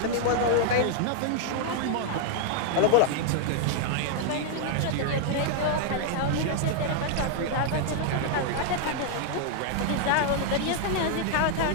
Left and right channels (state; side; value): different; both; correlation 0.00